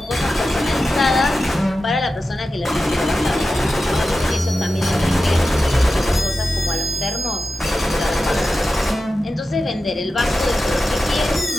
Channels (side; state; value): both; normal; correlation 0.92